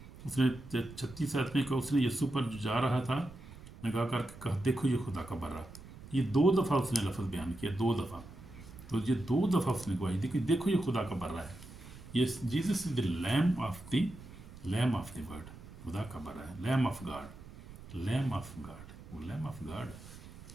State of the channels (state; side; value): noise; right; rumble, 16 dB below the sound